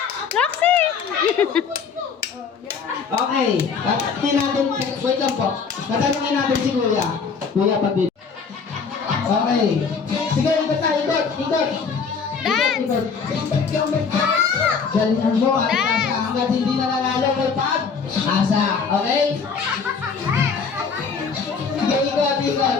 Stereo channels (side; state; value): right; quieter; 5.7 dB